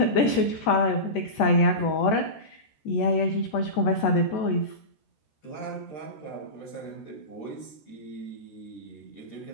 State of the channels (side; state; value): right; late; 14 ms